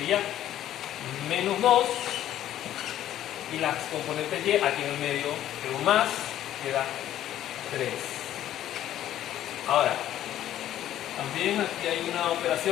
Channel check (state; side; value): quieter; right; 12.2 dB